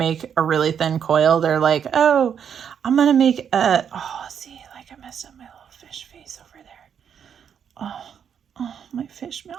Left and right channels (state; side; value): quieter; left; 8.0 dB